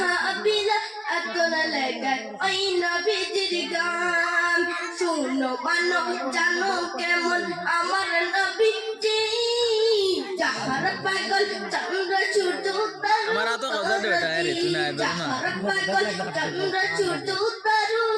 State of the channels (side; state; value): both; identical; correlation 1.00